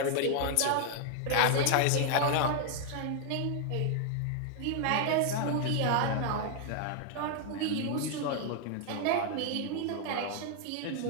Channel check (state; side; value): different; both; correlation 0.00